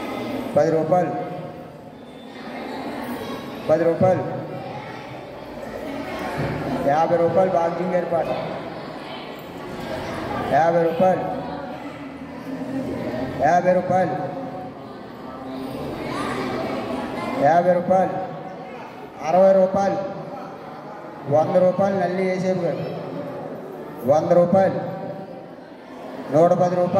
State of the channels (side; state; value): both; identical; correlation 1.00